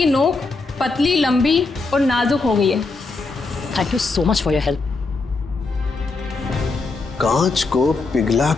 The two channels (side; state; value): right; quieter; 3.8 dB